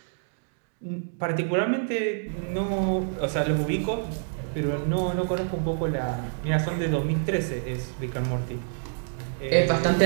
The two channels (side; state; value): left; silent; digital silence